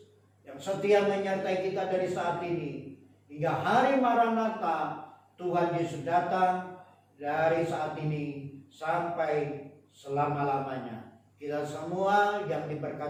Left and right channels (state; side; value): identical; both; correlation 1.00